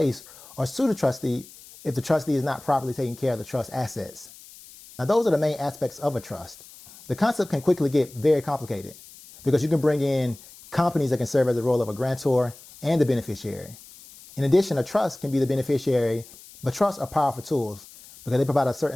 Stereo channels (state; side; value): noise; left; hiss, 20 dB below the sound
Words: or sue the trustee if the trustee is not properly taking care of the trust assets. Now, those are the main aspects of a trust. The concept can quickly get very complicated because you can bring in companies that can serve as the role of a grantor and the beneficiary. In addition, a trust can be the beneficiary, but trusts are powerful tools because they provide a